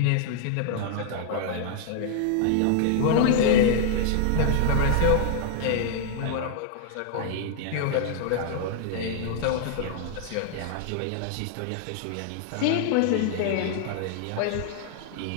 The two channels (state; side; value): different; both; correlation -0.01